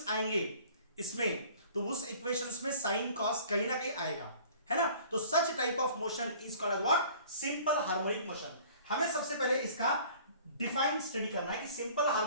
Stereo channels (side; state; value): both; inverted; correlation -0.49